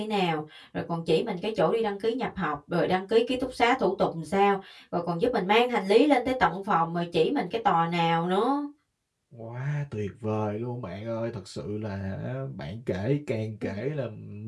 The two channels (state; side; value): identical; both; correlation 1.00